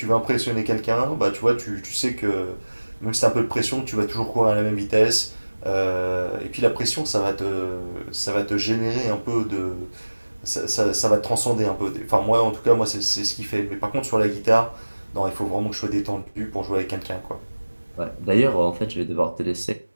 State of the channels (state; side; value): inverted; both; correlation -1.00